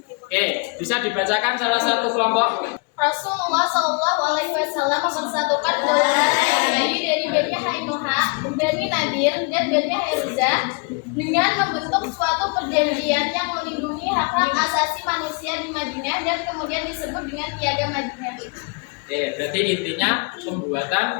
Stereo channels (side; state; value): right; quieter; 33.0 dB